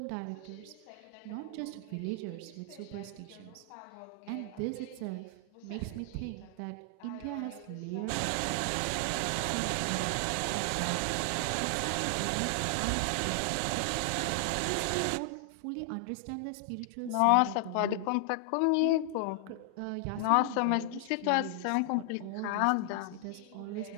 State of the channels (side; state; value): both; different; correlation 0.00